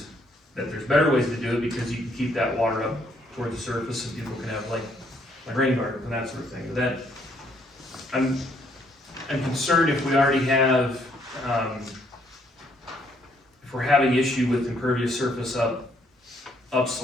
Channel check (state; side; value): normal; both; correlation 0.69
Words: better ways to do it, because you can keep that water up toward the surface, and people can have like rain gardens and that sort of thing, but that, I'm concerned if we already have, if we're having issue with impervious surface